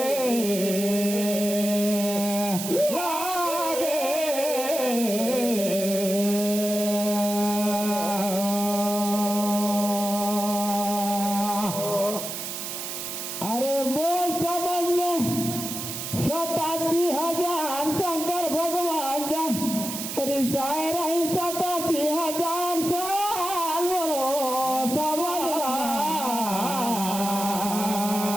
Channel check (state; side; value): noise; right; hiss, 6 dB below the sound